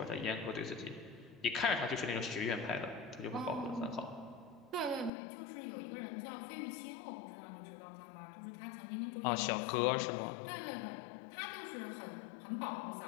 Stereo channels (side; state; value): right; drops out; at 5.1 s